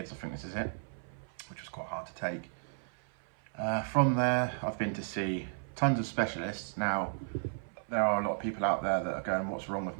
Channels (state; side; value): silent; left; 55 dB below the other